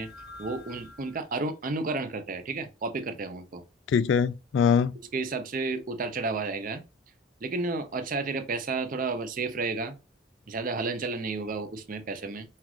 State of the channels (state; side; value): normal; both; correlation 0.33